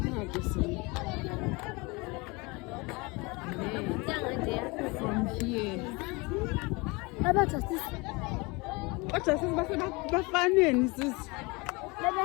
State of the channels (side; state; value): right; quieter; 26.2 dB